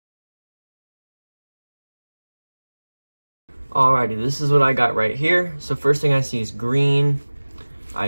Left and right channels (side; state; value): both; inverted; correlation -1.00